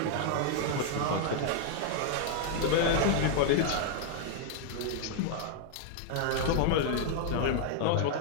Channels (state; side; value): different; both; correlation 0.00